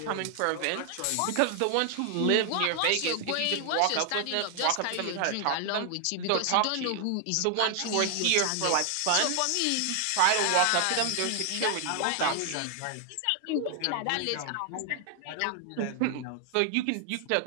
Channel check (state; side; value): different; both; correlation 0.00